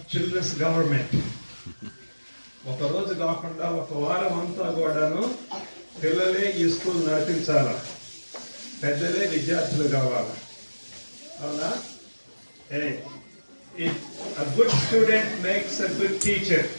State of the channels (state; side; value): inverted; both; correlation -1.00